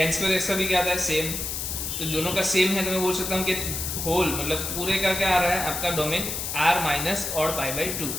square x का भी क्या आता है, सेम। तो दोनों का सेम है, तो मैं बोल सकता हूँ कि होल मतलब पूरे का क्या आ रहा है आपका domain r minus odd pi by two.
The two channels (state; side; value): noise; left; hiss, 3 dB below the sound